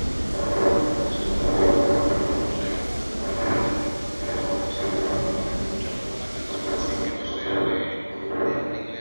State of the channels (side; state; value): both; inverted; correlation -1.00